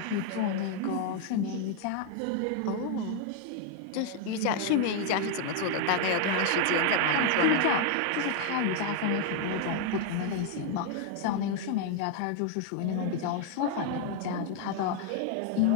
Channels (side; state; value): both; different; correlation 0.00